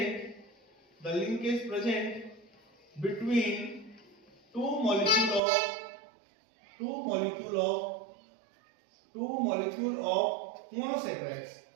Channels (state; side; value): drops out; left; at 5.4 s